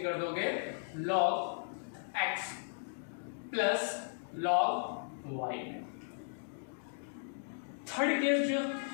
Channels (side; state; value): right; silent; digital silence